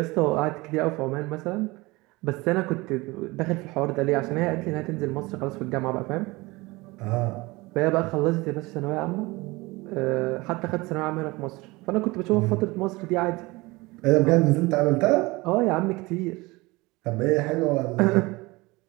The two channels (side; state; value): left; quieter; 22.6 dB